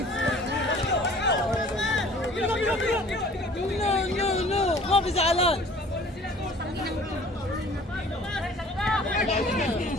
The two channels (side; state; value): both; normal; correlation 0.50